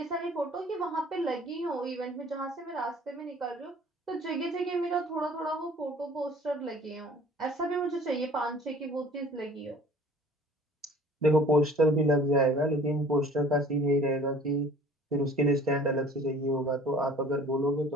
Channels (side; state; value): both; normal; correlation 0.49